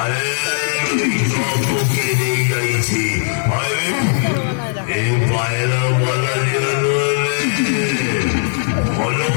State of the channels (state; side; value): silent; right; digital silence